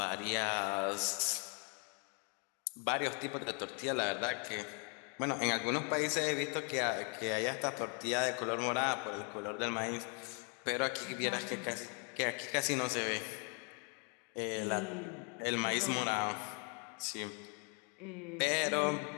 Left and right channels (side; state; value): right; quieter; 37.8 dB